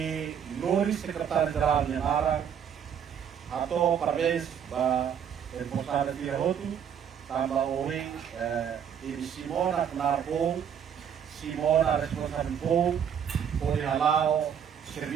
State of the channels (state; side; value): quieter; left; 8.3 dB